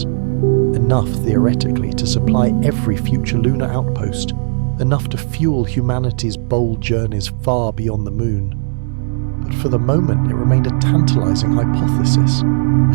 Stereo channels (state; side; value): silent; left; digital silence